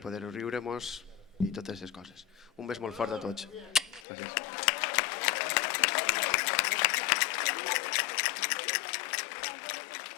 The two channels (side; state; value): right; drops out; at 4.0 s